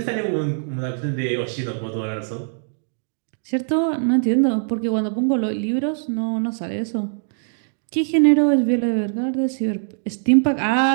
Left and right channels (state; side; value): silent; left; digital silence